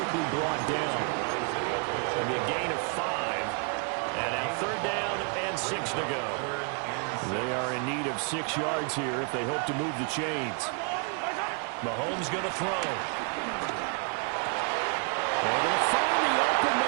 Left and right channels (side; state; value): left; quieter; 39.5 dB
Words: brought down. It'll be a gain of 5. And now 3rd down and 6 to go. They are in need of 6 yards here if they hope to move the chains. Mahomes going to throw. They're going to find the open